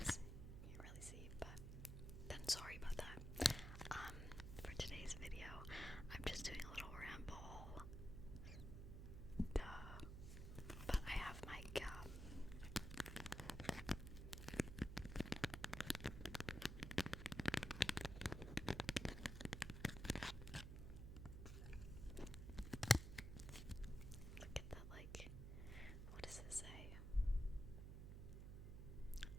you can't really see, but then sorry about that. For today's video, I'm just doing a little ramble. Duh. But I have my gum. Look at that, like, what does it say?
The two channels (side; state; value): right; noise; hum, 7 dB below the sound